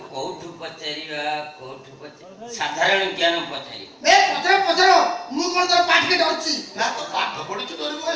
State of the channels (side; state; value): both; identical; correlation 1.00